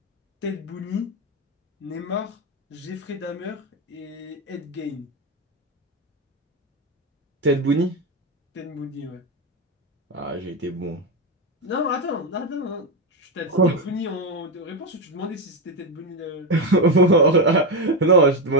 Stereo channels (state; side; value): normal; both; correlation 0.11